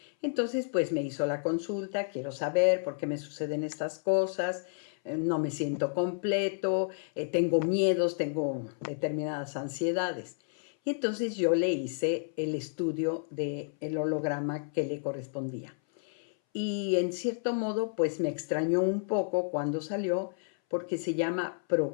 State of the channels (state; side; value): silent; right; 57 dB below the other